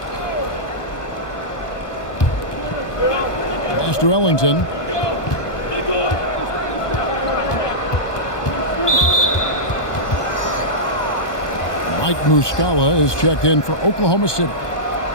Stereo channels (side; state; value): right; late; 1.2 ms